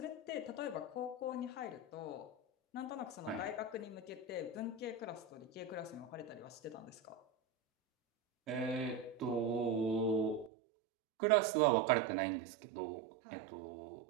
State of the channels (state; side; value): drops out; left; at 10.5 s